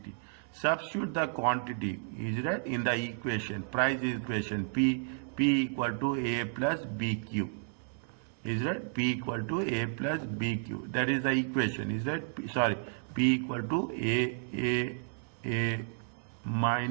Substitute the quantity, is that in the equation, price equation. P equal to A plus BQ. Is that P equal to A plus BQ? That is the equation. Is that P equal to A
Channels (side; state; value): left; silent; digital silence